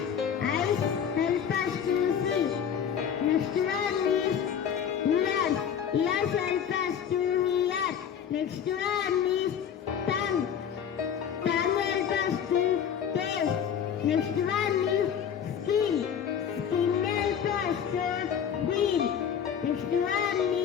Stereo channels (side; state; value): right; quieter; 8.2 dB